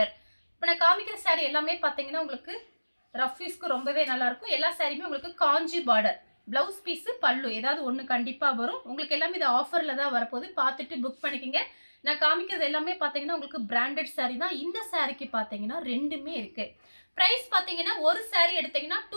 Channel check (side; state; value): both; inverted; correlation -1.00